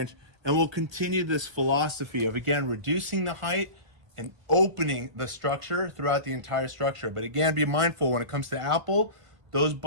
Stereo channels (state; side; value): late; left; 1.5 ms